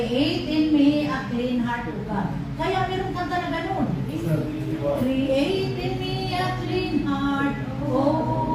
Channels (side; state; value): both; identical; correlation 1.00